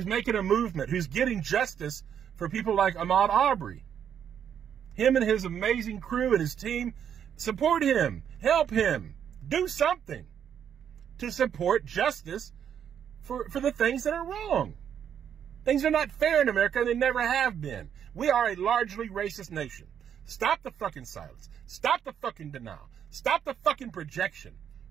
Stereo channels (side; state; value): left; quieter; 8.7 dB